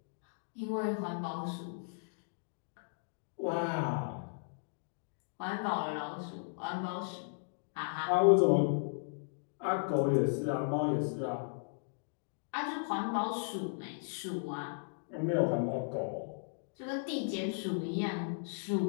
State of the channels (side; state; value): right; silent; digital silence